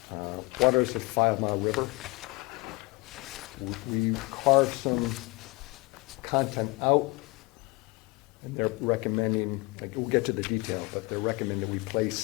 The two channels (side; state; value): right; quieter; 25.5 dB